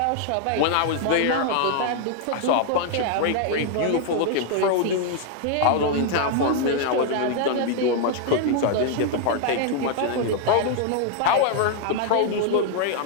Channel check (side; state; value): both; different; correlation 0.00